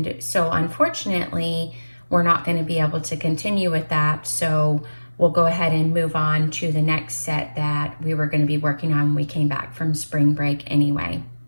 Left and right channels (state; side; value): inverted; both; correlation -1.00